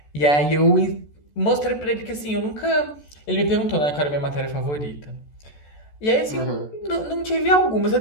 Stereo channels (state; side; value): late; right; 14 ms